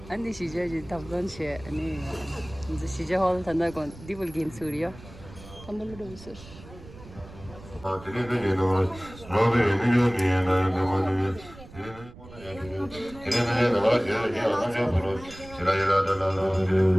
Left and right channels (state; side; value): noise; right; rumble, 18 dB below the sound